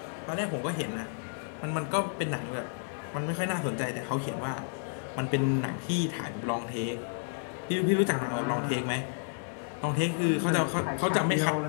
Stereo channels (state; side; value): silent; right; digital silence